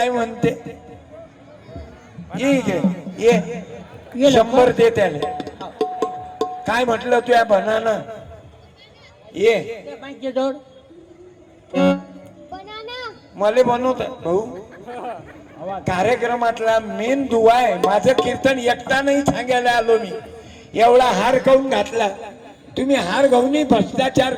म्हणते, ये 100 दे त्याला. काय म्हटलं तू या बनाना ये मला बनवत भाऊ. कार्यक्रमातला मेन दुवा आहे. माझं कीर्तन एकटा नाही सांगायला आलो मी. एवढा हार खाऊन घातला तुम्ही, हार घाऊनही भ्रष्टाचार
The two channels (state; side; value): identical; both; correlation 1.00